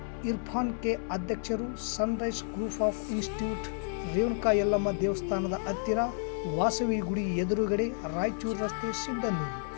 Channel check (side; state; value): right; silent; 57 dB below the other